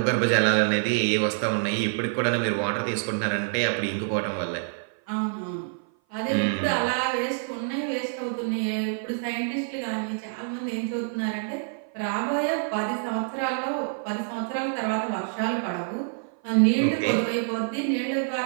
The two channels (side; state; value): left; silent; 56 dB below the other